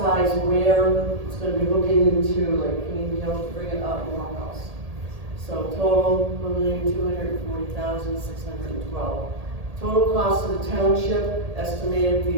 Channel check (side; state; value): left; late; 1.8 ms